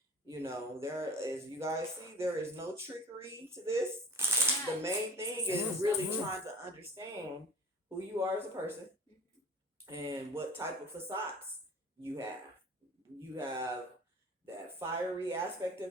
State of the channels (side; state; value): both; normal; correlation 0.41